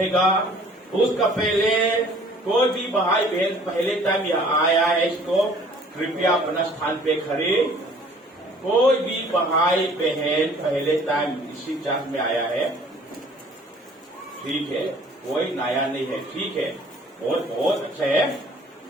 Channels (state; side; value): normal; both; correlation 0.54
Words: उसका पहले कोई भी भाई बहन पहले टाइम यहाँ आया है, इसको कृपया अपना स्थान पे खड़े। कोई भी भाई बहन पहले टाइम इसी चर्च में आया है, ठीक है, कोई नया नहीं है, ठीक है, बहुत अच्छा है।